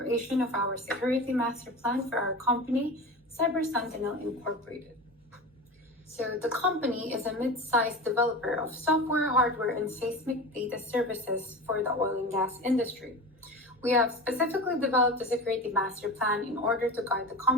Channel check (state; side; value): normal; both; correlation 0.30